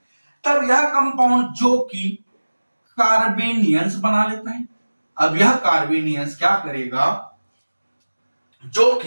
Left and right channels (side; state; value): both; inverted; correlation -1.00